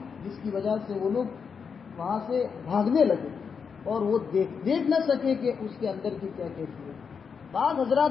جس کی وجہ سے وہ لوگ وہاں سے بھاگنے لگے اور وہ دیکھ نہ سکے کہ اس کے اندر کی کیا کیفیت۔ بعض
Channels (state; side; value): quieter; right; 6.1 dB